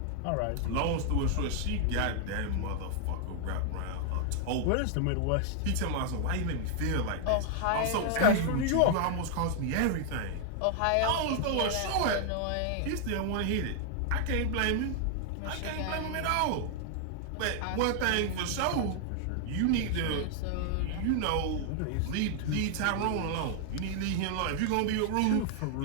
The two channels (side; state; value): both; different; correlation 0.00